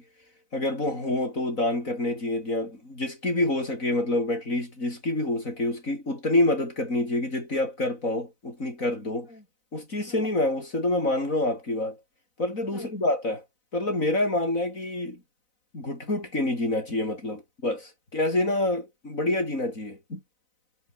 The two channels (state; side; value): late; right; 4.0 ms